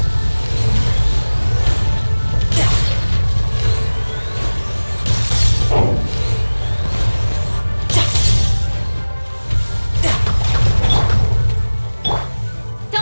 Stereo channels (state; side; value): inverted; both; correlation -1.00